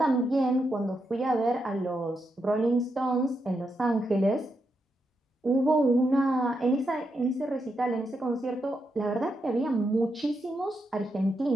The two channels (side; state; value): both; normal; correlation 0.84